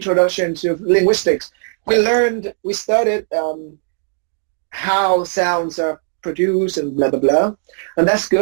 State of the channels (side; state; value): left; silent; 67 dB below the other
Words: to linguistics. We studied how sounds are produced and blah, blah, blah. And that's